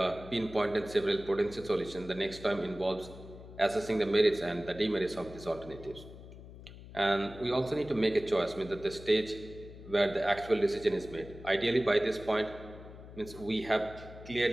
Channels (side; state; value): left; noise; hum, 16 dB below the sound